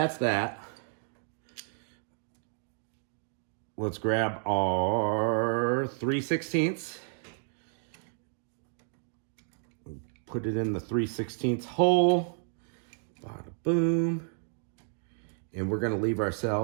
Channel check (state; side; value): silent; left; digital silence